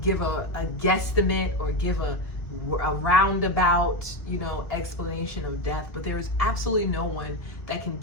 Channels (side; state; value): right; late; 2.0 ms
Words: give a guesstimate or give a roundabout, you know, explanation of death, but there is absolutely no one that can